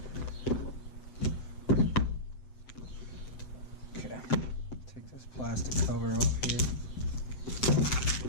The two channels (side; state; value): right; late; 7.8 ms